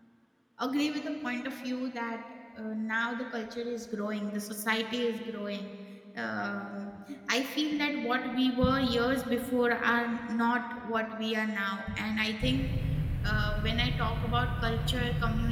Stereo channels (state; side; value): identical; both; correlation 1.00